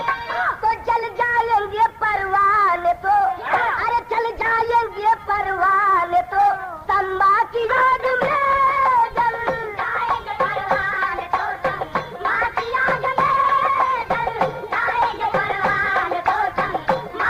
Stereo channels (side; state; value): both; identical; correlation 1.00